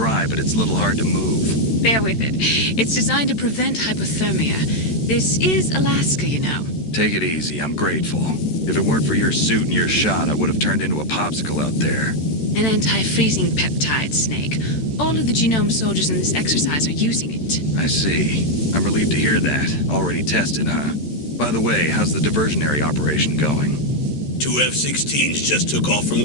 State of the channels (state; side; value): late; right; 13 ms